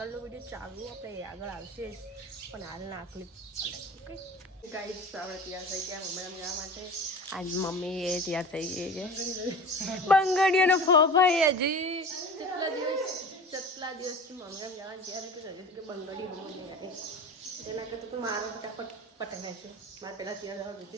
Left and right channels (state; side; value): normal; both; correlation 0.36